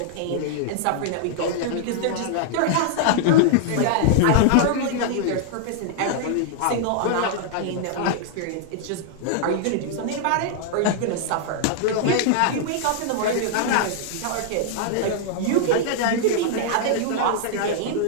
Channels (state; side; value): different; both; correlation -0.01